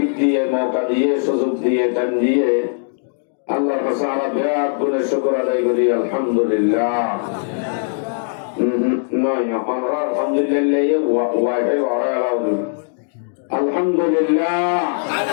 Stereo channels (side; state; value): right; silent; digital silence